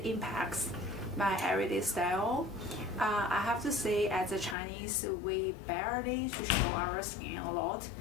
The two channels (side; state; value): right; drops out; at 4.5 s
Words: impacts my everyday style. I have to say, as a Chinese, we barely to show our skin a lot,